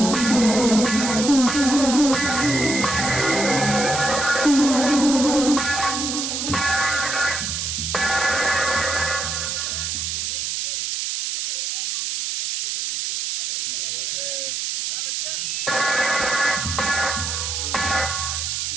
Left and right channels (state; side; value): noise; right; hiss, 2 dB below the sound